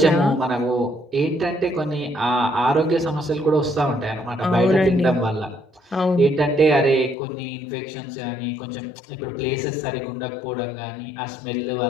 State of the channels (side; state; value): right; drops out; at 7.2 s